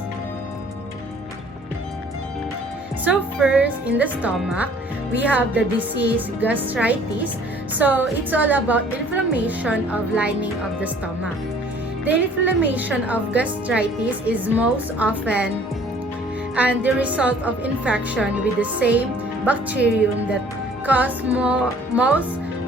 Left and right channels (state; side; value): normal; both; correlation 0.54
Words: So first, in the stomach, we have the disease gastritis. So it's all about inflammation of lining of the stomach. The inflammation of gastritis is most often and the result of infection with the same bacterium that cause most